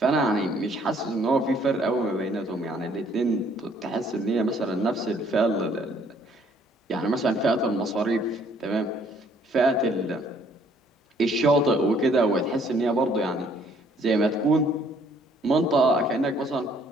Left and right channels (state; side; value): normal; both; correlation 0.63